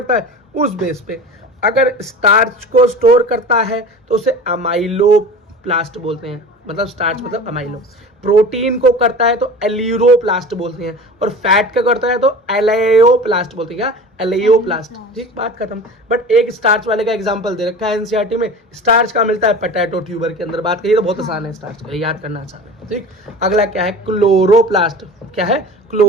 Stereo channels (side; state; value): both; normal; correlation 0.36